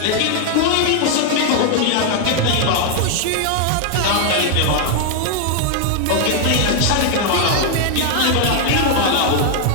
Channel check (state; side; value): different; both; correlation 0.00